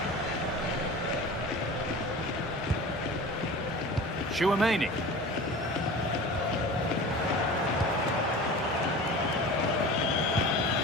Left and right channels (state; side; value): normal; both; correlation 0.36